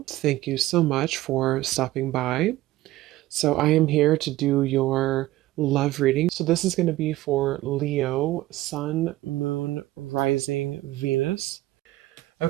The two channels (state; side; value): quieter; left; 16.7 dB